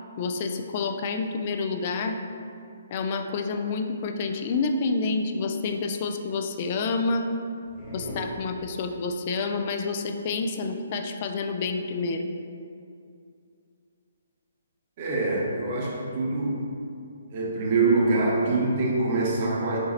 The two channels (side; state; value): both; inverted; correlation -0.57